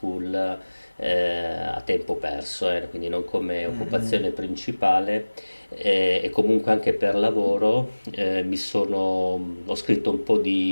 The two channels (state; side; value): inverted; both; correlation -1.00